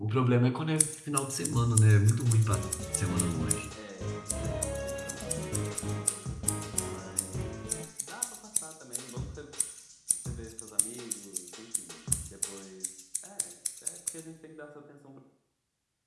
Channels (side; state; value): both; identical; correlation 1.00